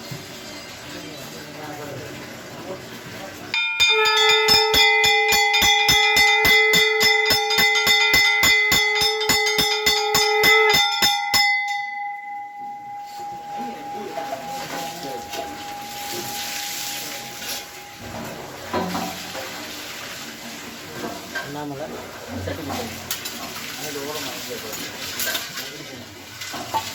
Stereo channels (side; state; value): both; identical; correlation 1.00